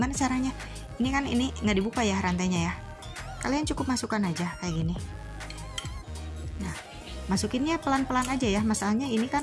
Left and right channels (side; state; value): both; identical; correlation 1.00